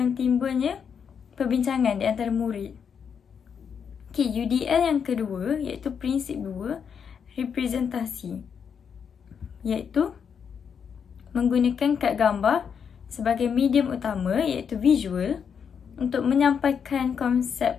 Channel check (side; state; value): right; quieter; 7.0 dB